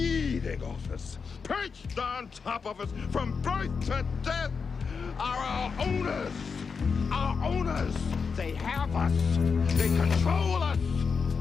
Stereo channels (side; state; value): right; quieter; 5.5 dB